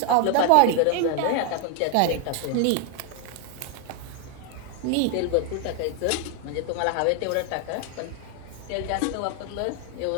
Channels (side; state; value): both; different; correlation 0.00